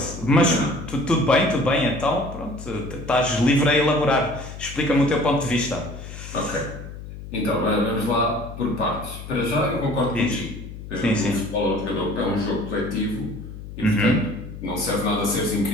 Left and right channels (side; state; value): left; noise; hum, 12 dB below the sound